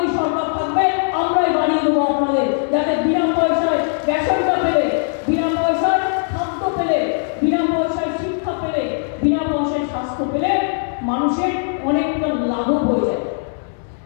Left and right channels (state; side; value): silent; right; 66 dB below the other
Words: সরকার থাকবে, আমরাই বাড়িয়ে দেবো আপনাদের, যাতে বিনা পয়সায় রেশনটা পেলে, বিনা পয়সায় খাদ্য পেলে, বিনা পয়সায় শিক্ষা পেলে, বিনা পয়সায় স্বাস্থ্য পেলে মানুষের অনেকটা লাঘব হয়ে যায়।